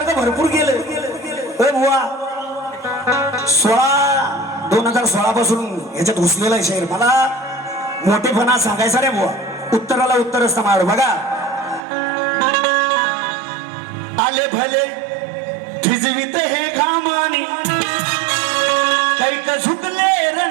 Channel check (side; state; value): left; drops out; at 11.8 s